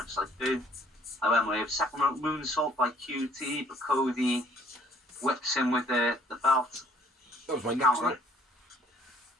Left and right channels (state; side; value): normal; both; correlation 0.60